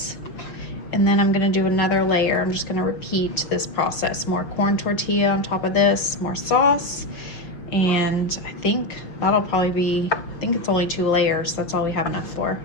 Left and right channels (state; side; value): late; right; 6.1 ms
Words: and then I'm gonna do another layer. I'm just gonna repeat this process. More corn tortilla on top of this, more sauce, and I think that'll probably be, I think it's only 2 layers, so that's all we have enough for.